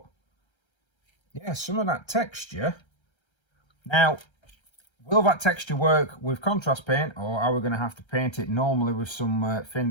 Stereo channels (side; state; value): right; late; 1.3 ms